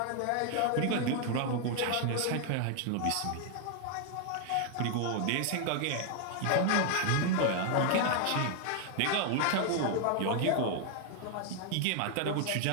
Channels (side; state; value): both; different; correlation 0.00